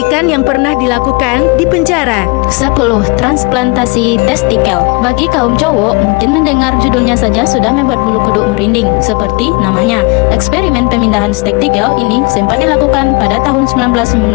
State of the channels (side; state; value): right; quieter; 29.0 dB